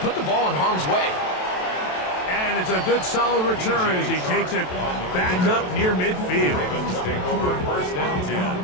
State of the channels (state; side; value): late; right; 27 ms